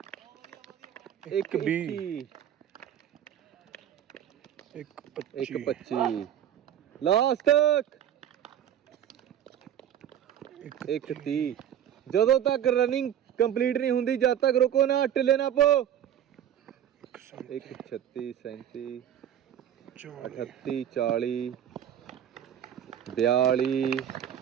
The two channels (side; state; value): left; quieter; 10.2 dB